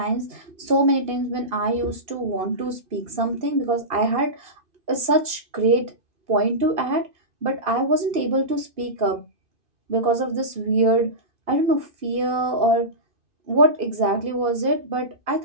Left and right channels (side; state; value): left; late; 2.8 ms